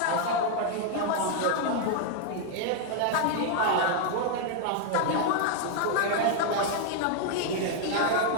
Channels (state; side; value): different; both; correlation 0.00